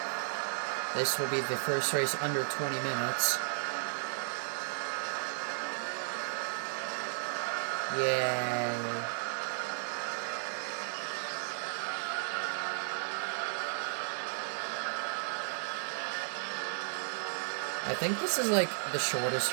This will be the first race under 20 minutes. Yay. I think this is like the shortest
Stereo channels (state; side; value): silent; left; digital silence